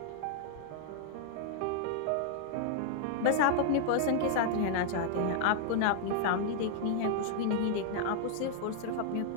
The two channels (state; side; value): different; both; correlation -0.01